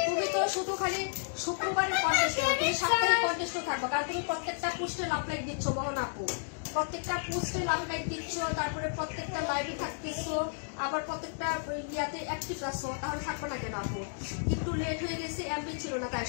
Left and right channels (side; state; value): right; silent; digital silence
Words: তুমি তো শুধু খালি শুক্রবারের কন্টেস্ট, তুমি সাপ্তাহিক কন্টেস্টও থাকবো, কারণ তুমি প্রত্যেকটা পোস্টে লাভ লাইক দিচ্ছ মোহন আপু, প্রত্যেকটা পোস্টে লাভ লাইক দিচ্ছ, তারপরে প্রত্যেকটা লাইভে থাকতেছো, আবার প্রত্যেকটা ইয়াতে অ্যাক্টিভ আছো, তাহলে থাকবো না কেন আপু? একটু লেট হয়ে গেছে, এমবি ছিল না, তাই